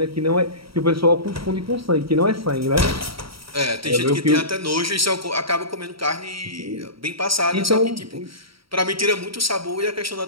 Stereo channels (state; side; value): late; left; 0.75 ms